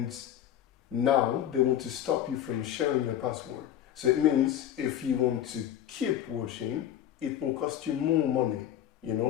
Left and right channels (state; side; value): quieter; right; 10.8 dB